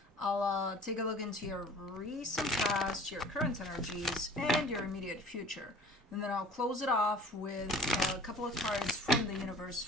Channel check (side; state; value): both; normal; correlation 0.46